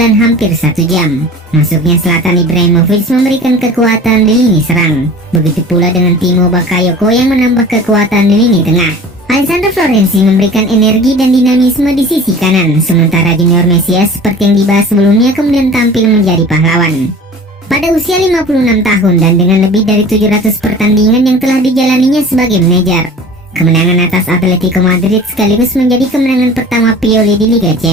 hampir 1 jam. Masuknya Zlatan Ibrahimovic memberikan kekuatan di lini serang. Begitu pula dengan Timo Bakayoko yang menambah kekuatan di lini tengah. Alessandro Florenzi memberikan energi dan dinamisme di sisi kanan, sementara Junior Mesias seperti yang dibahas sebelumnya kemudian tampil menjadi pahlawan. Pada usia 56 tahun dan dengan lebih dari 700 pertandingan yang telah dijalaninya sebagai manajer, kemenangan atas Atletico Madrid sekaligus menjadi kemenangan pertama Pioli di Liga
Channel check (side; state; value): both; normal; correlation 0.41